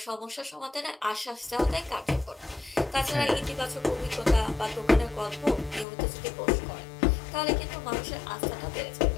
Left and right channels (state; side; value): drops out; right; at 5.9 s